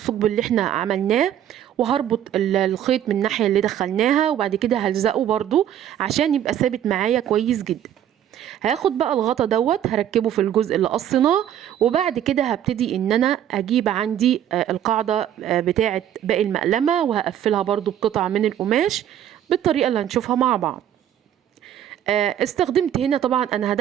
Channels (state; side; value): quieter; left; 10.6 dB